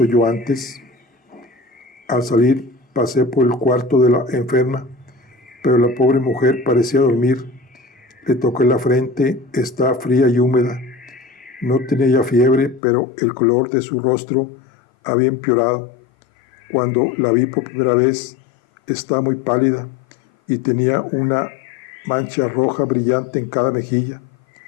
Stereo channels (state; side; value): drops out; right; at 12.8 s